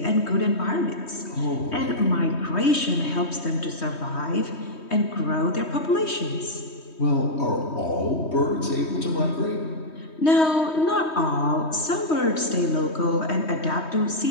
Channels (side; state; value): right; late; 3.2 ms